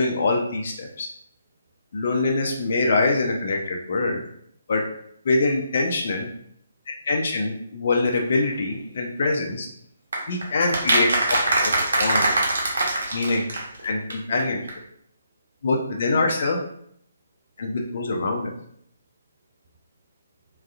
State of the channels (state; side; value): inverted; both; correlation -0.77